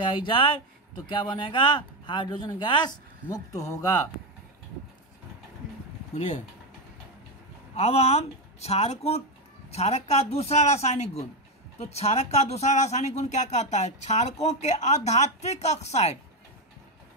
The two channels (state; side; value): normal; both; correlation 0.09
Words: जाए तो क्या बनेगा? हाइड्रोजन गैस मुक्त होगा। बोलिए, अब हम क्षारक का दूसरा रासायनिक गुण, तो क्षारक का दूसरा रासायनिक गुण क्या कहता है? क्षारकों के अधात्विक